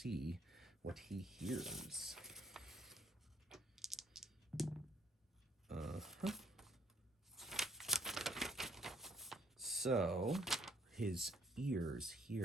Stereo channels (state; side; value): normal; both; correlation 0.66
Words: what he hears. So his ears